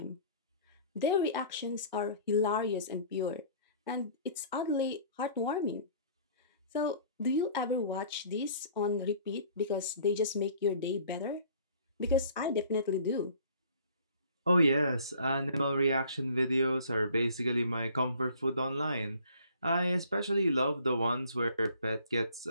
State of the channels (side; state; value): both; inverted; correlation -0.53